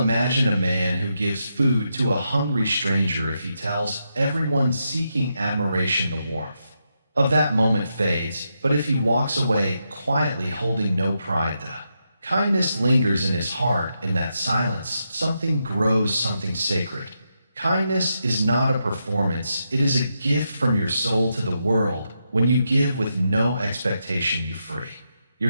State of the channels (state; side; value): inverted; both; correlation -0.84